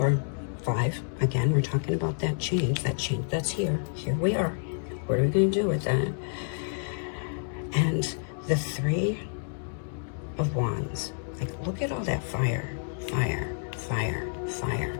are 5. Again, we're talking about that change that's here. Here we are. What are we going to do with that? And the 3 of Wands. Like, look at all that fire, fire, fire, fire.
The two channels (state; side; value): silent; right; digital silence